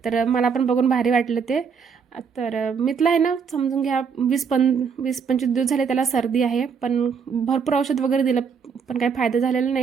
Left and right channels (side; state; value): left; quieter; 6.2 dB